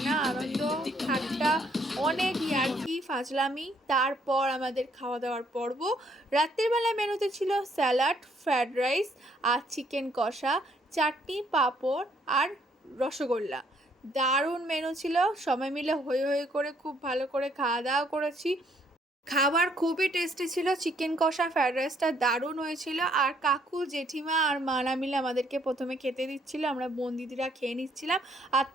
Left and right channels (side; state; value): both; normal; correlation 0.68